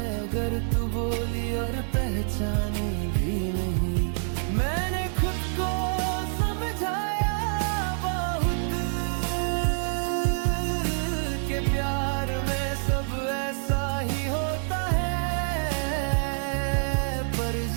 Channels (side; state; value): left; silent; digital silence